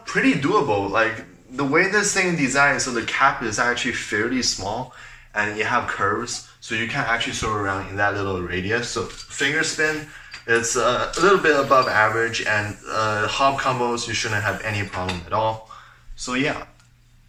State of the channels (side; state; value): both; identical; correlation 1.00